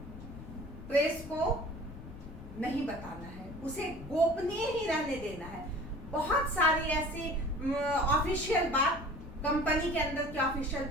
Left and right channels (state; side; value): noise; left; rumble, 13 dB below the sound